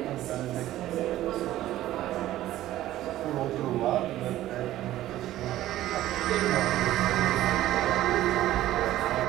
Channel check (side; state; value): left; quieter; 14.3 dB